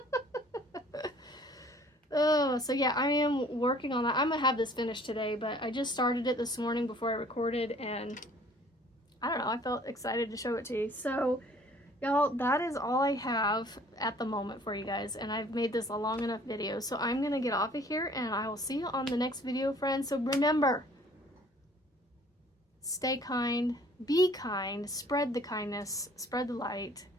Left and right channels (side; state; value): both; normal; correlation 0.54